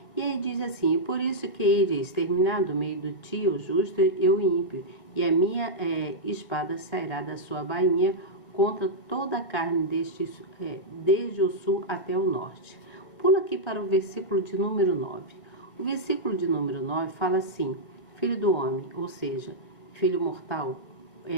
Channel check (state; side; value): late; right; 1.7 ms